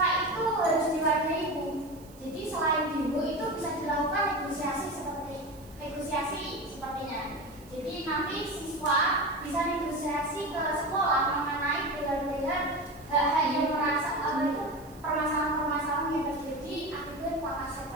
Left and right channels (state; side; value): noise; right; hiss, 24 dB below the sound